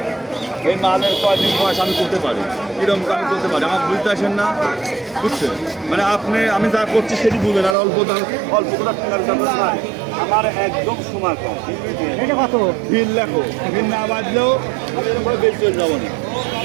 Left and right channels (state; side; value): drops out; left; at 7.8 s